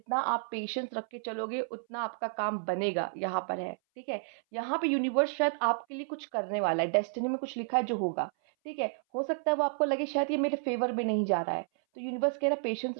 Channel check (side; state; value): left; silent; 57 dB below the other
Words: आप पेशेंस रख के चलोगे उतना आपका काम बनेगा, यहाँ पर है, ठीक है? यहाँ पे यूनिवर्स शायद आपके लिए कुछ करने वाला है, डेस्टिनी में कुछ लिखा है जो होगा, ठीक है? हो सकता है वो आपको लगे शायद ये मेरे फ़ेवर में नहीं जा रहा है, तो यूनिवर्स कह रहा है पेशेंस